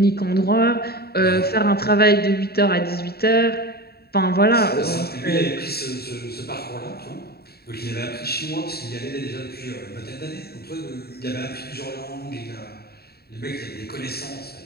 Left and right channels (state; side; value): late; right; 0.46 ms